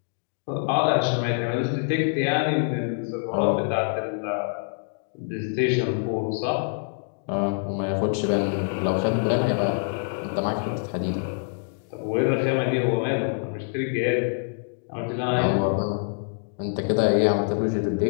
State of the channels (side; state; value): right; silent; digital silence